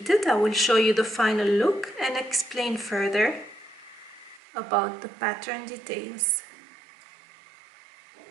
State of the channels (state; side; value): drops out; left; at 4.4 s